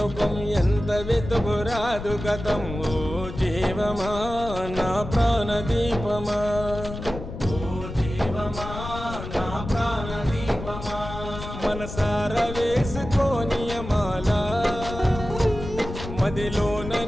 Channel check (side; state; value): left; noise; rumble, 9 dB below the sound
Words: ఎంత వెతుకురాదు గతం ఓ జీవమా నా ప్రాణదీపమా ఓ జీవమా నా ప్రాణదీపమా మనసార వేసుకోనియమాల మదిలోన